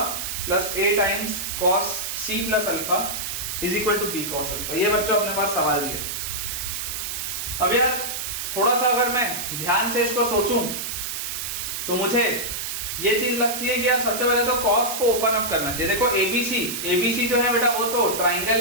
plus a times cos c plus alpha is equal to b cos alpha. ये बच्चों अपने पास सवाल दिए. अब यार थोड़ा सा अगर मैं ध्यान से इसको सोचूं तो मुझे ये चीज लगती है कि यार सबसे पहले तो cos को ओपन अप करना चाहिए. देखो ABC जो है बेटा वो तो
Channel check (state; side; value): noise; right; hiss, 4 dB below the sound